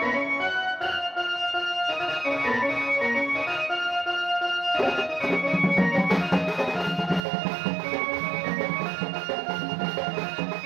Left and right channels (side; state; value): left; drops out; at 7.2 s